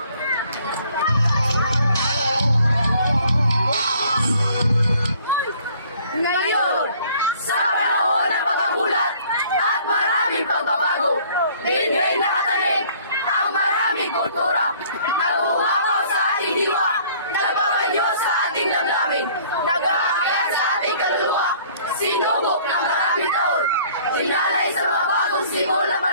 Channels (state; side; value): inverted; both; correlation -0.56